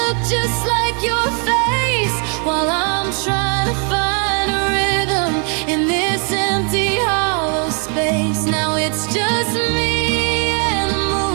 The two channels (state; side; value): quieter; left; 38.7 dB